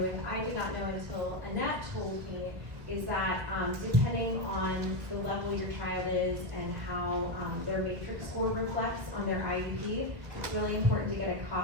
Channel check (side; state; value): left; late; 1.3 ms